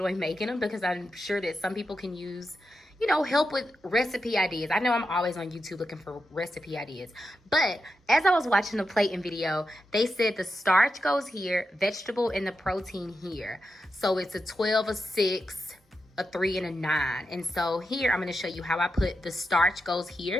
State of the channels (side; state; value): both; normal; correlation 0.88